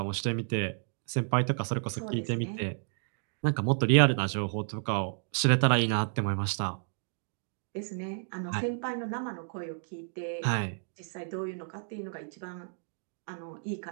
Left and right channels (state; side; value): silent; left; digital silence